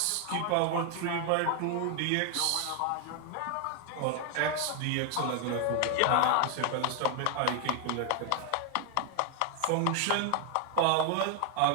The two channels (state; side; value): different; both; correlation 0.00